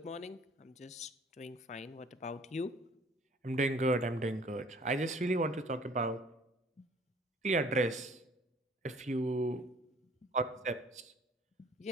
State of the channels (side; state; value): both; normal; correlation 0.54